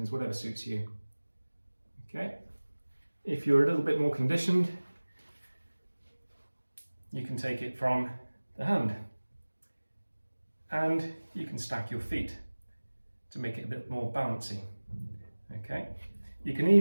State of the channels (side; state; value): both; inverted; correlation -1.00